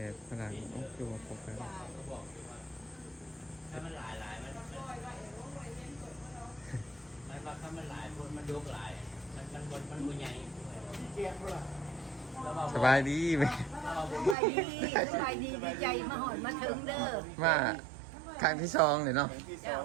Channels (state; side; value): drops out; left; at 14.4 s